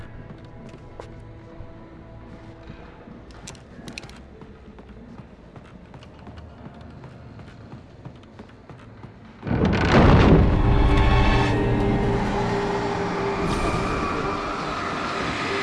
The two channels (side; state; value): both; identical; correlation 1.00